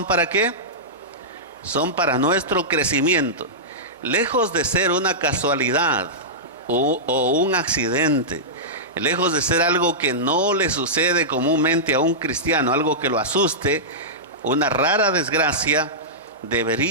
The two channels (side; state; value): both; normal; correlation -0.14